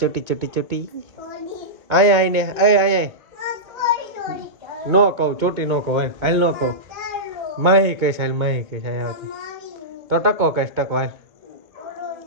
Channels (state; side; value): late; left; 2.2 ms